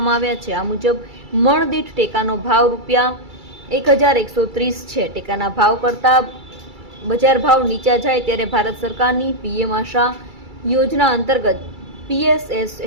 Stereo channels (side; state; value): left; late; 2.3 ms